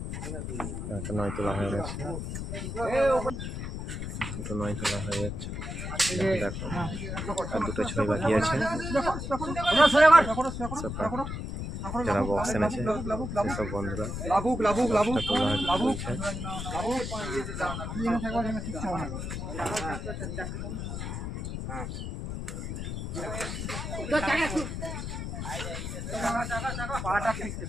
নয় তোলা হয়ে গেছে, দুটো নয় তোলা হয়ে যাচ্ছে। দেখো আর দুটো ছয় বাকি আছে। যারা বক্স এনেছে সেসব বন্ধুরা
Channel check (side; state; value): left; noise; rumble, 5 dB below the sound